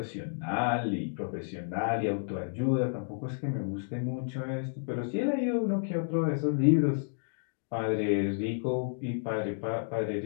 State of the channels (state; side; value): silent; right; digital silence